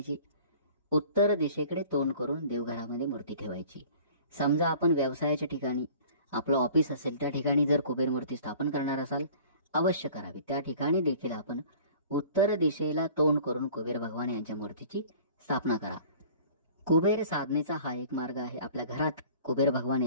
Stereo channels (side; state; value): both; inverted; correlation -0.48